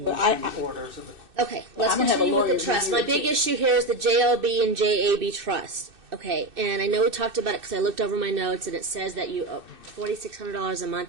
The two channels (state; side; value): late; left; 2.6 ms